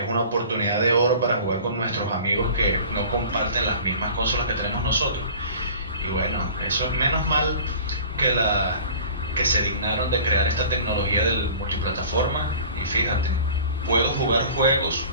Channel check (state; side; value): inverted; both; correlation -0.42